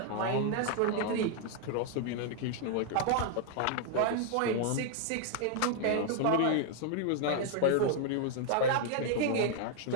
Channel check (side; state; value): both; different; correlation 0.00